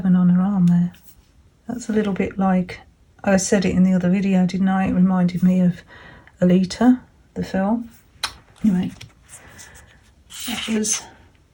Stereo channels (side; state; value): both; identical; correlation 1.00